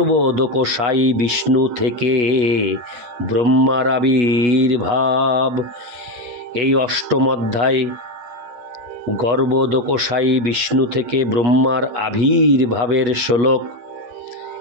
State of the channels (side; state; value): left; late; 8.3 ms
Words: বিষ্ণু থেকে ব্রহ্মার আবির্ভাব। এই অষ্টম অধ্যায় গর্ভোদকশায়ী বিষ্ণু থেকে ব্রহ্মার আবির্ভাবের শ্লোক